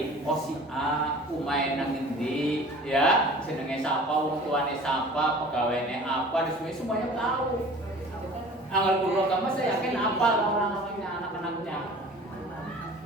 oh si A umain nang endi ya, jenenge sapa, wong tuane sapa, pegawainya apa, semuanya tahu. Anggal kulo kamu saya yakin apal orang-orangnya, anak-anaknya.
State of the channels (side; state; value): both; normal; correlation 0.44